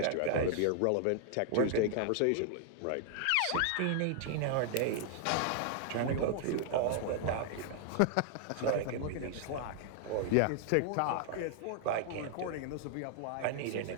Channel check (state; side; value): different; both; correlation 0.00